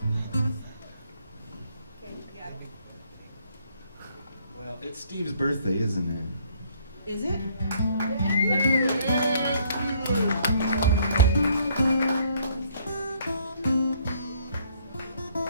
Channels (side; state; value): both; inverted; correlation -0.65